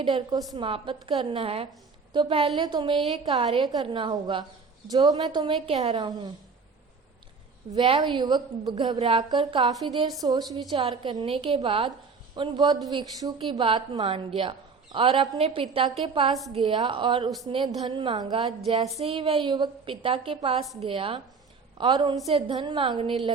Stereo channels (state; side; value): quieter; left; 5.0 dB